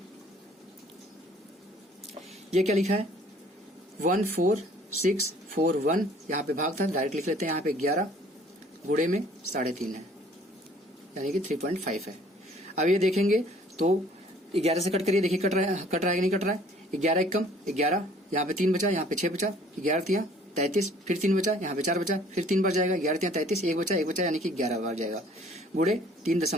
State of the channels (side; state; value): both; normal; correlation 0.56